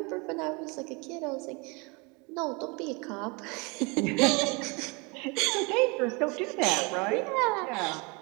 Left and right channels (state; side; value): quieter; left; 28.9 dB